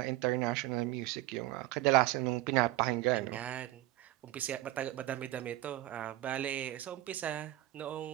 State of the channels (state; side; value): quieter; left; 16.0 dB